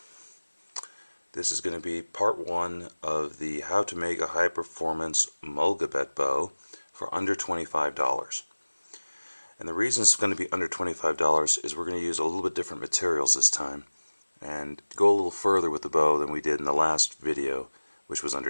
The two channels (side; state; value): both; inverted; correlation -1.00